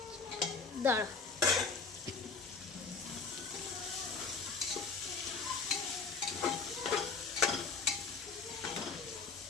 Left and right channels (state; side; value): quieter; right; 4.8 dB